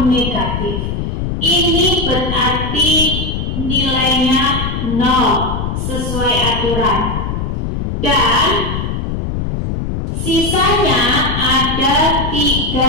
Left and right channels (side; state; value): left; noise; rumble, 3 dB below the sound